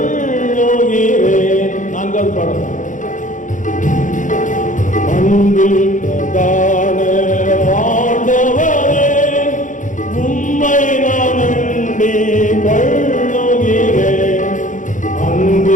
4வது பாடல். அன்பில் பிரதான ஆண்டவரே, உம்மை நான் அண்டி கொள்ளுகிறேன்.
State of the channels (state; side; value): late; right; 0.37 ms